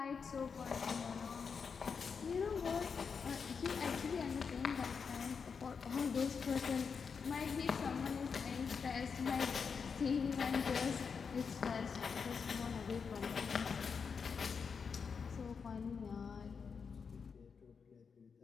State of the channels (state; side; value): quieter; right; 5.8 dB